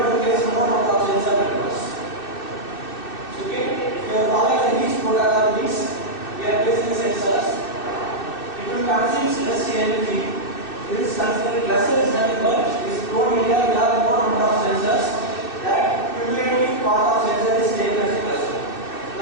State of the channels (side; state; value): right; late; 2.6 ms